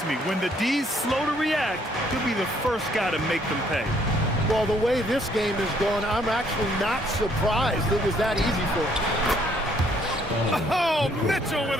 me, when the D's slow to react, he'll be the first guy to make them pay. Well, the way this game is going, I'm actually not surprised it was that easy for him. Oh, Mitchell with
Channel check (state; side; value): normal; both; correlation 0.66